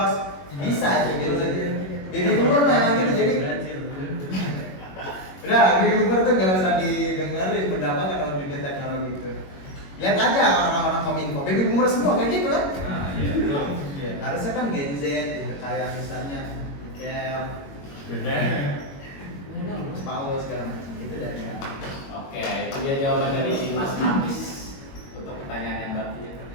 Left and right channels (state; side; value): late; right; 21 ms